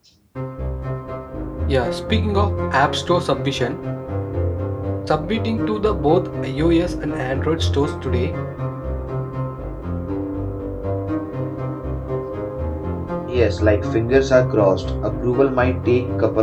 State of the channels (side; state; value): both; identical; correlation 1.00